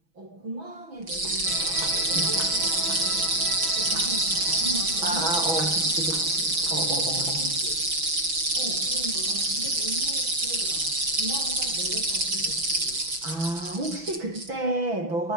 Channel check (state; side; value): late; left; 6.1 ms